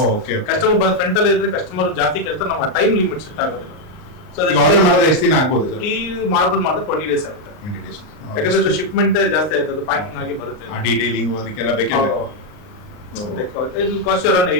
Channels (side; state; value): right; late; 38 ms